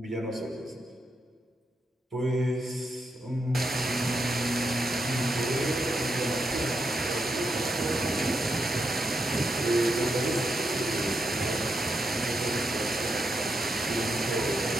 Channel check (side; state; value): both; normal; correlation 0.83